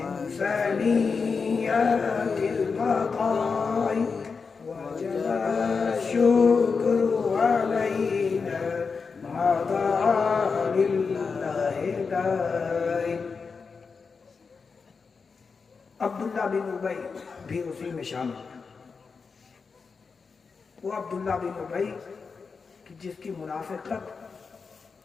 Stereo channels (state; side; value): quieter; right; 5.1 dB